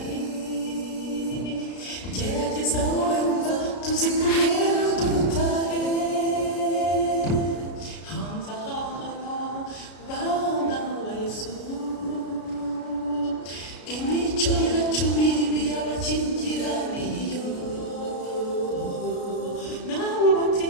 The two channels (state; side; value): late; right; 33 ms